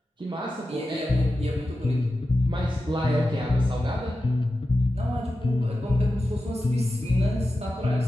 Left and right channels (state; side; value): normal; both; correlation 0.92